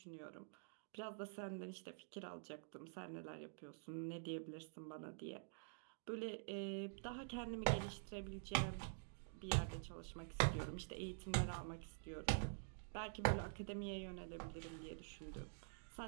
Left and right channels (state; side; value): silent; left; digital silence